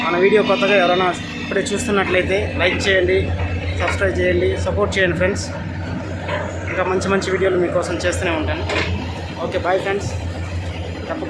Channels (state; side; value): identical; both; correlation 1.00